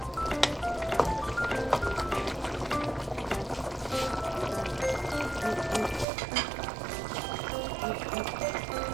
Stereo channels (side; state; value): left; drops out; at 6.1 s